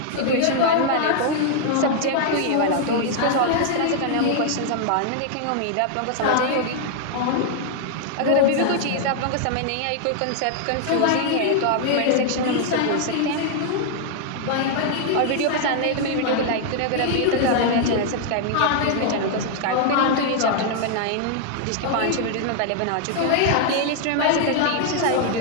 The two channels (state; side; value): different; both; correlation 0.00